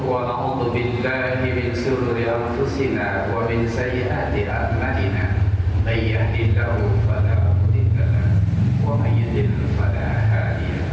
wa na'udzu billahi min shururi anfusina wa min sayyiati a'malina may yahdihillahu fala mudilla lahu wa may yudlil fala hadiya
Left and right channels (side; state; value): both; identical; correlation 1.00